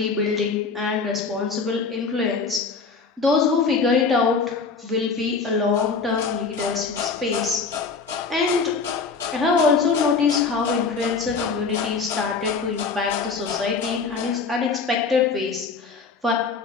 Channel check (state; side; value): quieter; right; 4.8 dB